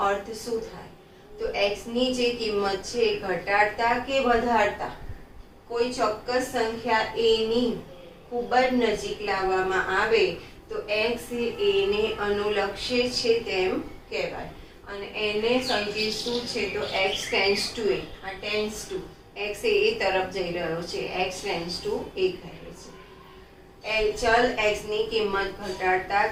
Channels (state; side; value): identical; both; correlation 1.00